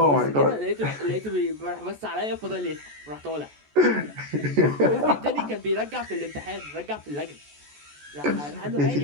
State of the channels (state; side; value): late; left; 14 ms